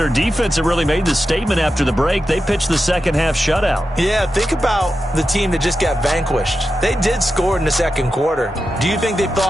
defense that really made the statement after the break. They pitched the second half shutout. Yeah, think about the team that just got vanquished. They did score in the second quarter. Do you think they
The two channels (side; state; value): both; normal; correlation 0.90